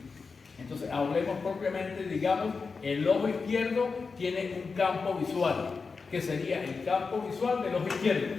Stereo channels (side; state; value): right; quieter; 4.7 dB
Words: Entonces, hablemos propiamente, digamos, el ojo izquierdo tiene un campo visual, que sería el campo visual del ojo izquierdo,